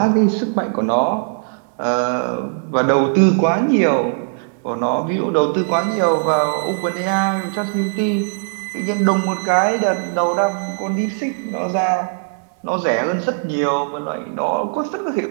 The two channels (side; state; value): left; silent; 66 dB below the other